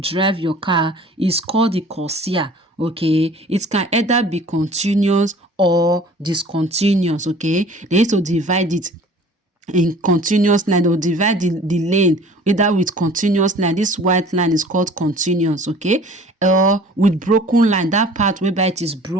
drive your car is called the corsia, okay? It can either be continuous or discontinuous, okay? They used to divide it in continuous line. They will divide the lane either with continuous line. This white line is called continuous, okay? Or with broken line, that part whereby it is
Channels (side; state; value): both; normal; correlation 0.48